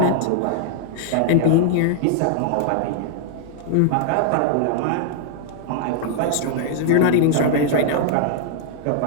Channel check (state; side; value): different; both; correlation -0.01